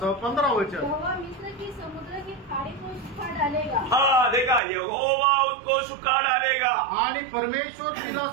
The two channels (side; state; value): left; drops out; at 4.6 s